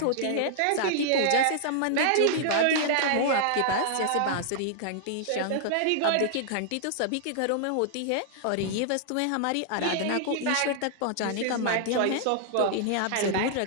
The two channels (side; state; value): both; different; correlation -0.01